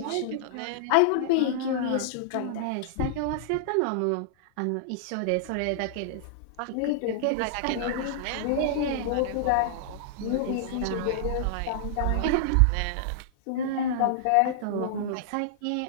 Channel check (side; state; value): both; different; correlation -0.01